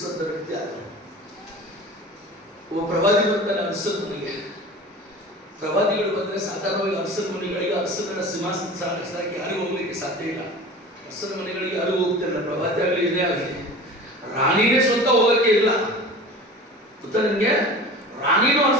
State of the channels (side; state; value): both; normal; correlation 0.37